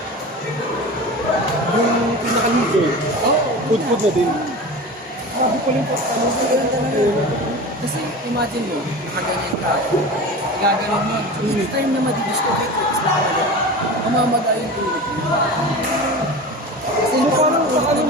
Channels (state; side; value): normal; both; correlation 0.31